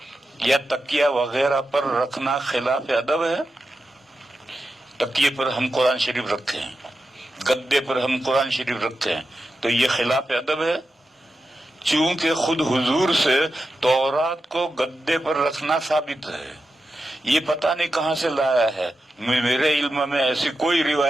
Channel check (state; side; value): normal; both; correlation 0.90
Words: یا تکیہ وغیرہ پر رکھنا خلاف ادب ہے. تکیے پر ہم قرآن شریف رکھے ہیں، گدے پر ہم قرآن شریف رکھتے ہیں، تو یہ خلاف ادب ہے. چونکہ خود حضور سے تورات کو گدے پر رکھنا ثابت ہے. یہ پتہ نہیں کہاں سے لایا ہے، میرے علم میں ایسی کوئی